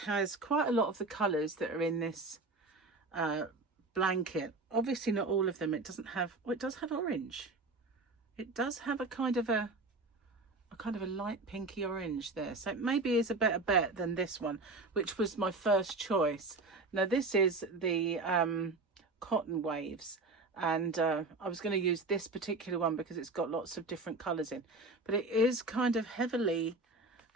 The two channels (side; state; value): left; quieter; 3.3 dB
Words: has quite a lot of the colours that are in this blanket. Obviously not all of them. It doesn't have, well, it does have orange. It does have a kind of a light pinky orange there, so it maybe is a better bet than this one, which was my first choice. Now this is the cotton waves, and I was going to use this particular one because it's got lots of different colors in, but it is kind of heavily